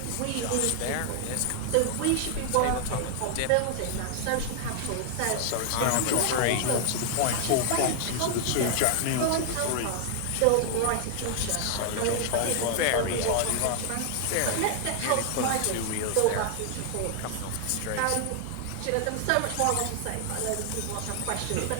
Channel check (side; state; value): both; different; correlation 0.00